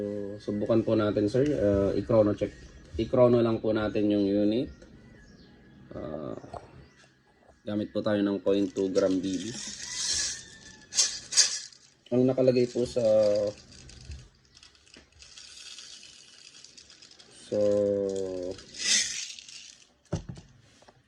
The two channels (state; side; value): identical; both; correlation 1.00